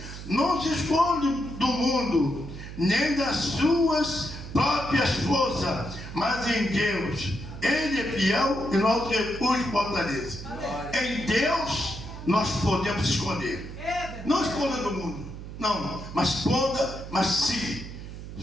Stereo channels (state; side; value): noise; right; hum, 11 dB below the sound